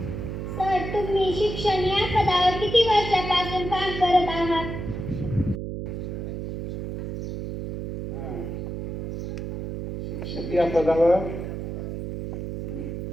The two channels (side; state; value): right; noise; hum, 6 dB below the sound